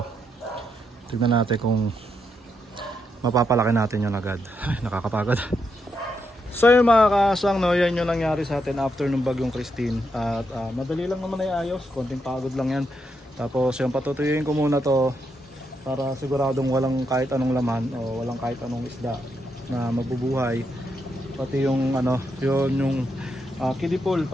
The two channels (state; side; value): normal; both; correlation 0.81